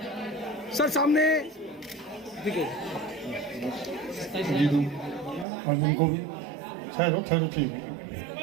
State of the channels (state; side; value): drops out; left; at 5.5 s